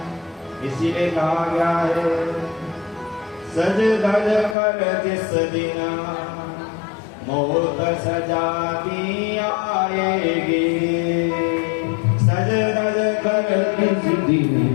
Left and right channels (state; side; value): drops out; right; at 4.5 s